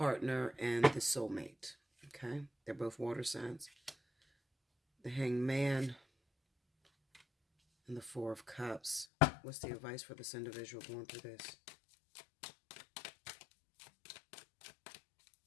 and the soulmate. Okay? They're both water signs. The Hanged Man and the 4 of Cups. What's the advice for this individual going through this?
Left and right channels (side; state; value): right; drops out; at 9.1 s